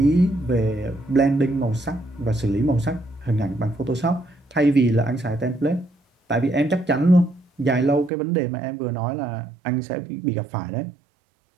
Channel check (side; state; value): left; drops out; at 8.1 s